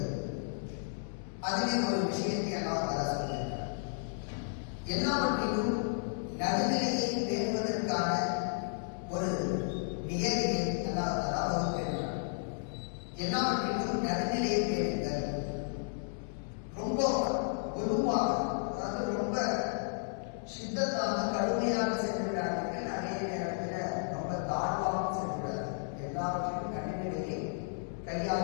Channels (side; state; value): right; silent; digital silence